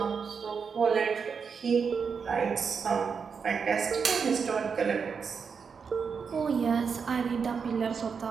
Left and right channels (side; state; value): left; quieter; 5.9 dB